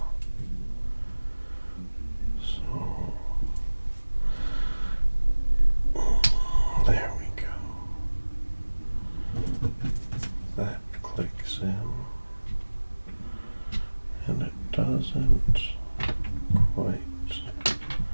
So, there we go. That clicks in, and it doesn't quite fit.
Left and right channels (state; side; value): inverted; both; correlation -1.00